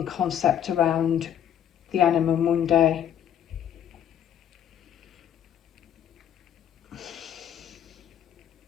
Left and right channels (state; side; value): quieter; right; 9.8 dB